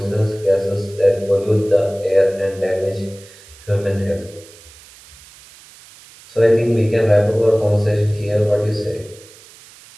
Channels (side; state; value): right; noise; hiss, 22 dB below the sound